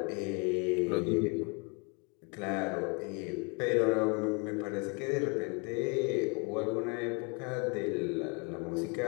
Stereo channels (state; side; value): quieter; right; 33.4 dB